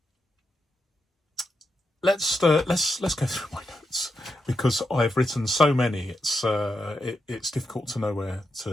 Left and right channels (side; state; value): both; normal; correlation 0.85